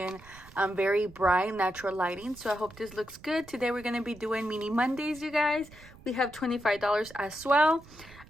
Very bright natural lighting, so I hope this looks good. Today we're going to be doing mini Mondays, you guys. We have $25 as well.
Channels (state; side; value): noise; right; rumble, 21 dB below the sound